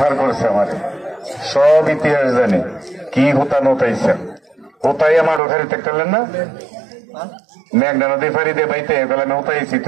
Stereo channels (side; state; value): left; drops out; at 5.4 s